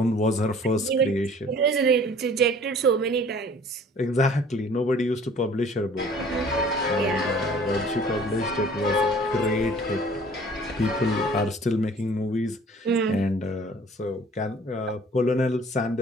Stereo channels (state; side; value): normal; both; correlation 0.51